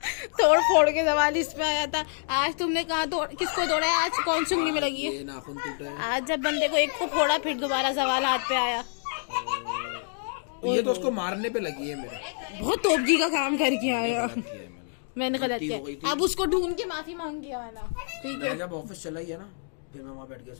तोड़ फोड़ के सवाल इस पे आया था। आज तुमने कहा किसको तोड़ा है, आज कौन सुंगली में लगी है। ये नाखून टूटा है। आज जब बंदे को एक को फोड़ा फिर दोबारा सवाल हाथ पे आया। ये तो उसको मारने पे लगी है मेरे। बहुत तोपजी का काम करके आया। गलत किया है मैंने गलत गलती हो गई किया, थी। अब उसको ढूंढ के माफी मांग के आना। ठीक मैं है, जब ऑफिस चला ही है ना, फिर मैं वहाँ बैठ के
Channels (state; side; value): silent; right; digital silence